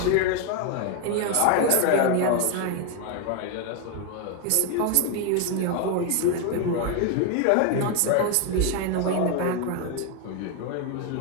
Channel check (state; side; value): different; both; correlation 0.01